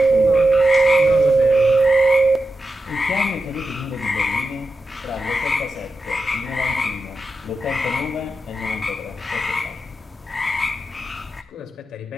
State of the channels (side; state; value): both; normal; correlation 0.90